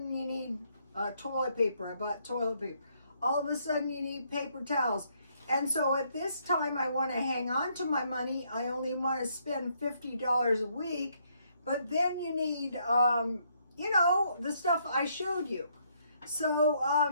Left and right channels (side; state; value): both; inverted; correlation -0.71